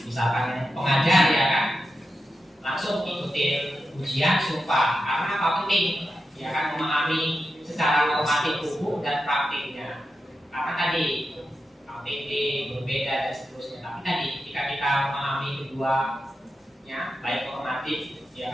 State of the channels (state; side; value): normal; both; correlation 0.89